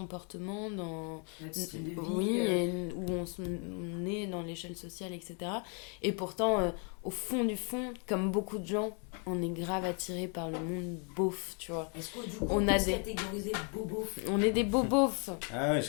dans notre style de vie, où on est dans l'échelle sociale, etc. Et pourtant, au fond du fond, comme beaucoup de gens, on est grave attiré par le monde beauf, tu vois. Est-ce qu'on peut catégoriser bobo? On est des bobos. Ah ouais,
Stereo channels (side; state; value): right; quieter; 37.6 dB